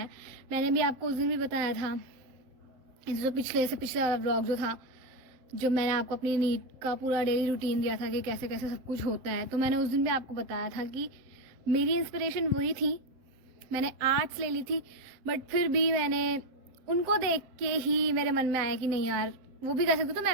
मैंने भी आपको उस दिन भी बताया था, जो पिछले वाला ब्लॉग जो था, जो मैंने आपको अपनी नीट का पूरा डेली रूटीन दिया था कि कैसे कैसे सब कुछ होता है, तो मैंने उस दिन भी आपको बताया था कि मेरी इंस्पिरेशन वही थी। मैंने आर्ट्स ले ली थी बट फिर भी मैंने उनको देख के ही मेरे मन में आया कि नहीं यार वो भी कर सकती तो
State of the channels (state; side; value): late; left; 7.6 ms